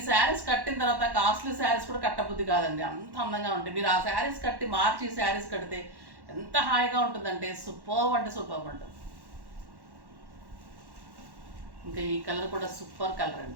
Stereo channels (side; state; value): left; late; 1.1 ms